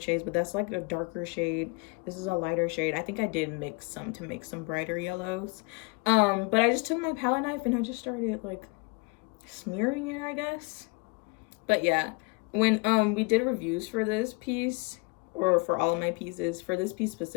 shades, but that's like a darker shade. This is a lighter shade. I think I did mix some to make some brighter yellows. But I just took my palette knife and I just started like smearing it, I guess. But yeah, when we did reviews for this piece, or for all of my pieces, for this piece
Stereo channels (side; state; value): right; quieter; 29.8 dB